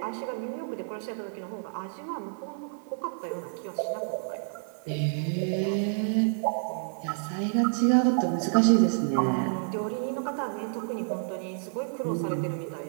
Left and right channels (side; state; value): left; silent; 58 dB below the other